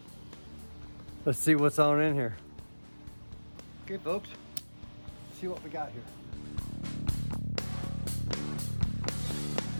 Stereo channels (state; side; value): inverted; both; correlation -1.00